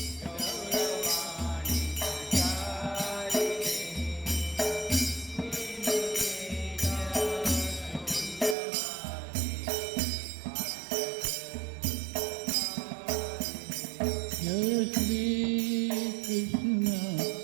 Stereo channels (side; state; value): left; drops out; at 8.6 s